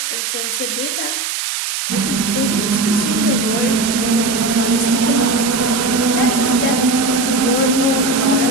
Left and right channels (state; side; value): noise; right; hiss, 3 dB below the sound